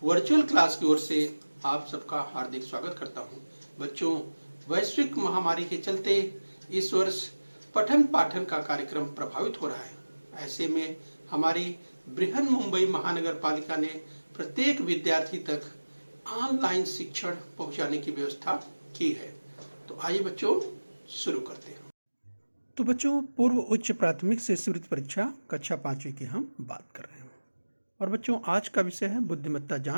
वर्चुअल क्लास की ओर से आप सबका हार्दिक स्वागत करता हूं। बच्चों, वैश्विक महामारी के चलते इस वर्ष पठन पाठन का कार्यक्रम प्रभावित हो रहा है। ऐसे में हमारी बृहन मुंबई महानगर पालिका ने प्रत्येक विद्यार्थी तक ऑनलाइन शिक्षण पहुंचाने की व्यवस्था की है। तो आइए बच्चों शुरू करते हैं। तो बच्चों, पूर्व उच्च प्राथमिक से शिष्यवृत्ति परीक्षा कक्षा 5वीं की हम बात कर रहे हैं। और बच्चों, आज का विषय है बुद्धिमत्ता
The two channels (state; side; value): inverted; both; correlation -1.00